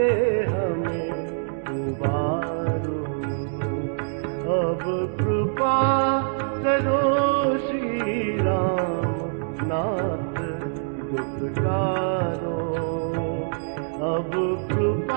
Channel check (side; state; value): left; silent; digital silence